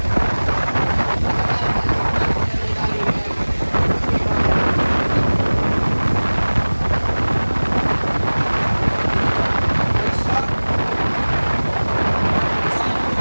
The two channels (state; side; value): inverted; both; correlation -1.00